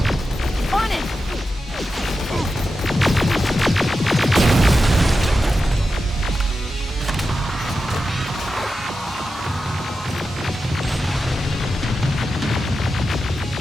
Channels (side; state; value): both; normal; correlation 0.91